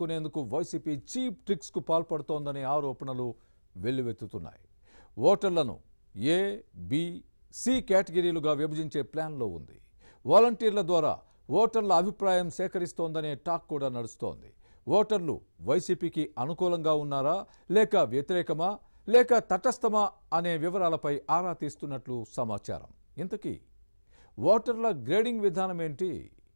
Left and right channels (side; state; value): both; inverted; correlation -1.00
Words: YCP cheap tricks కు పాల్పడుతోందనే ఆరోపణలు వెల్లువెత్తుతున్నాయి. ఓటర్లను ఏ, బి, సి కేటగిరీలుగా విభజించే ప్లాన్లో ఉంది. వాలంటీర్ల ద్వారా ఓటర్ల అభిప్రాయం సేకరిస్తోందనే టాక్ కూడా నడుస్తోంది. ఓటర్లు వైసీపీకి అనుకూలంగా ఉన్నారా, లేక వ్యతిరేకమా, లేక తటస్థమా అనే వివరాలపై ఆరా తీస్తున్నట్లు సమాచారం. ఇంతకీ ఓటర్ల గ్రేడింగ్ విధానం ఏంటి?